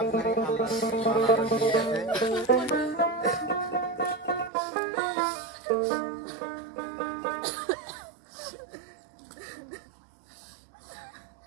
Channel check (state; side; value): drops out; left; at 4.5 s